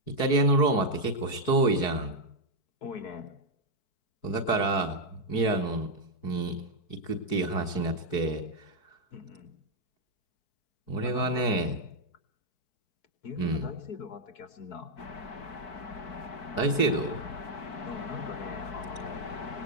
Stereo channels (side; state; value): right; late; 4.6 ms